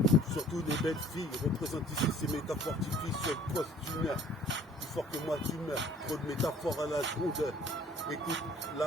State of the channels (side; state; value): both; normal; correlation 0.53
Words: surtout les belles filles, représente ici ces métaphores typiques sur le poste d'une heure, plus fort que moi tu meurs, trop de métaphores à la seconde. Écoute,